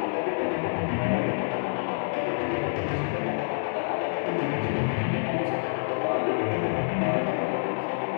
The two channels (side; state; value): right; silent; digital silence